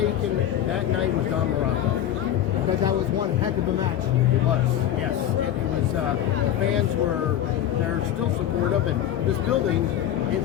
that night was Don Morocco. Because that was one heck of a match. It was, yes. It was, the fans they're still supportive, and this building, it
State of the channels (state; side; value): quieter; right; 11.1 dB